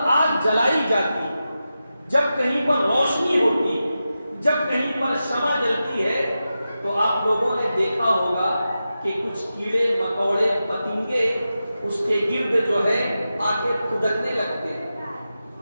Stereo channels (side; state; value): both; inverted; correlation -0.91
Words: آگ جلائی جاتی، جب کہیں پر روشنی ہوتی، جب کہیں پر شمع جلتی ہے تو آپ لوگوں نے دیکھا ہوگا کہ کچھ کیڑے مکوڑے پتنگے اس کے گرد جو ہے آ کے کھدکنے لگتے ہیں.